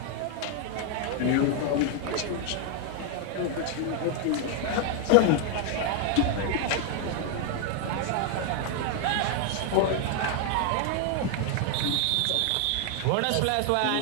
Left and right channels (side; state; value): both; different; correlation 0.00